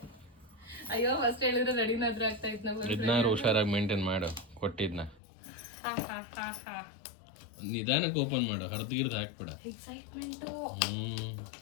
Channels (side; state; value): right; drops out; at 5.2 s